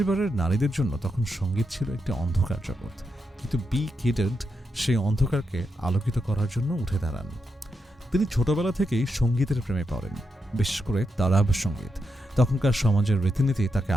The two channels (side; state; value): both; normal; correlation 0.85